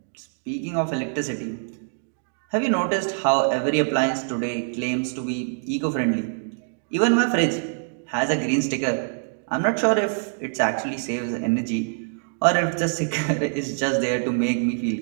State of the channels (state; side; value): silent; left; digital silence